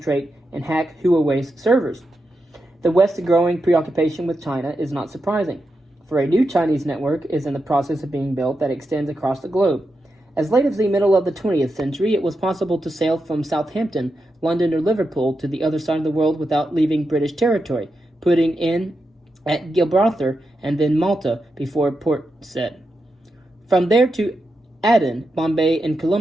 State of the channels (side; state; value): both; normal; correlation 0.87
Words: and hack Huawei's servers. The West's growing preoccupation with China is not surprising, for a new Chinese network is in the process of being built that extends across the globe. As late as the middle of the 20th century, it was possible to sail from Southampton, London, or Liverpool to the other side of the world without leaving British territory, putting in at Gibraltar and then Malta before Port Said. From there to Aden, Bombay, and